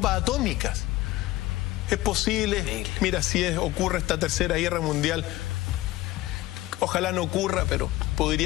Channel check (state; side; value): quieter; right; 17.2 dB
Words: atómicas. Es posible, mira, si ocurre esta Tercera Guerra Mundial, ojalá no ocurra, pero